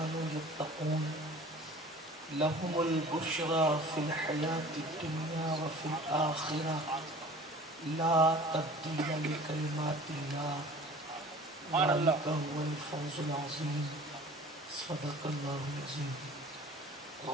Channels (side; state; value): both; normal; correlation 0.45